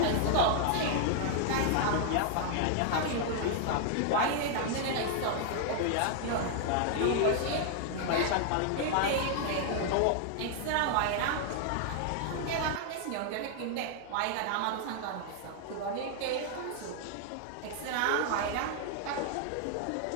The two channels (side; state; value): both; different; correlation 0.00